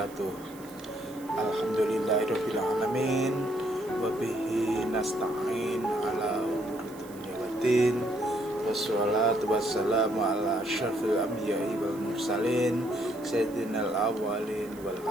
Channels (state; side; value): noise; right; hiss, 21 dB below the sound